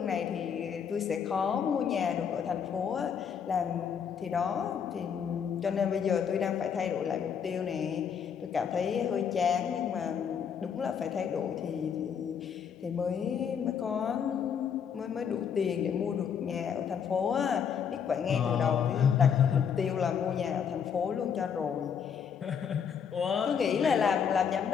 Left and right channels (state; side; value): quieter; right; 7.4 dB